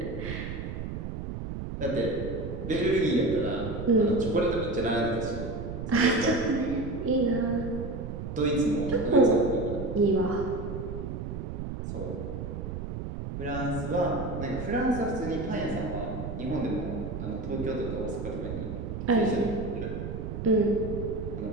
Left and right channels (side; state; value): right; noise; rumble, 6 dB below the sound